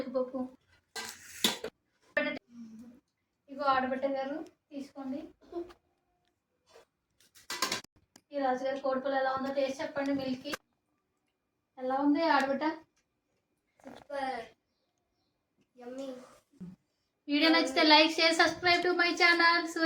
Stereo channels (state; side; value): identical; both; correlation 1.00